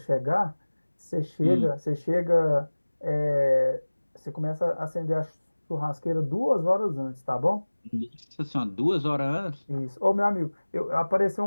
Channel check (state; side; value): inverted; both; correlation -1.00